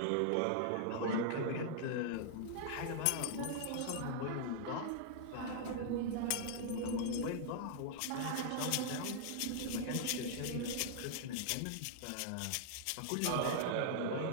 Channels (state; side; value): different; both; correlation -0.01